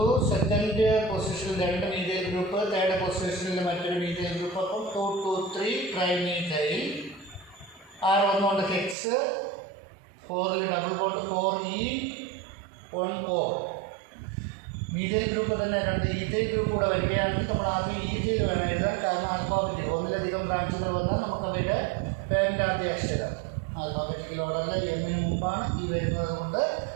സെക്കൻഡ് പൊസിഷനിൽ 2 മീഥൈൽ ഗ്രൂപ്പ്, തേർഡ് പൊസിഷനിൽ മറ്റൊരു മീഥൈൽ ഗ്രൂപ്പ്. അപ്പം 2 2 3 ട്രൈ മീഥൈൽ. R വന്നുകൊണ്ട് ഹെക്സ്, 4ൽ double bond 4E 1 ol. Methyl group തന്നെ 2 ഈഥൈൽ ഗ്രൂപ്പ് കൂടെ വരികയാണെങ്കിൽ നമ്മൾ ആദ്യം ഈഥൈൽ വേണം എഴുതാൻ. കാരണം ആൽഫാബറ്റിക് ഒന്നിലധികം ബ്രാഞ്ചുകൾ വന്നാൽ നമുക്ക് അവരുടെ പേരിൻ്റെ ആദ്യ അക്ഷരം ആൽഫാബറ്റിക്കൽ ഓർഡറിൽ എമ്മിന് മുമ്പാണ് ഈ വരുന്നത് കൊണ്ട്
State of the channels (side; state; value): left; drops out; at 9.0 s